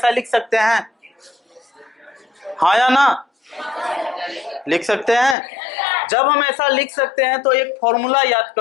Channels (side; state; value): right; drops out; at 5.4 s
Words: लिख सकते हैं, हाँ या ना, लिख सकते हैं। जब हम ऐसा लिख सकते हैं तो एक फॉर्मूला याद